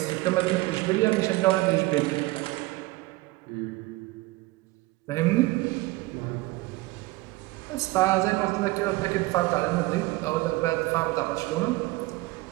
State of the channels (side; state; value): left; quieter; 20.6 dB